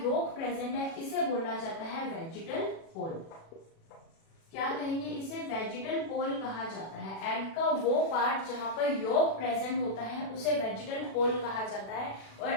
यॉक प्रेजेंट है इसे बोला जाता है वेजिटल पोल। क्या कहेंगे इसे, वेजिटल पोल कहा जाता है। एग का वो पार्ट जहां पर यॉक प्रेजेंट होता है उसे वेजिटल पोल कहा जाता है, और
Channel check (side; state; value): right; late; 36 ms